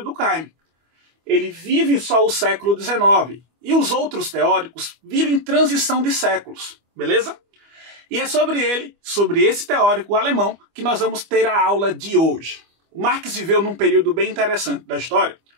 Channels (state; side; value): late; left; 25 ms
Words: Durkheim. Ele vive só o século XIX. E os outros teóricos vivem transição de séculos, beleza? E é sobre ele, sobre esse teórico alemão, que nós vamos ter a aula de hoje. O Marx viveu num período bem interessante da história,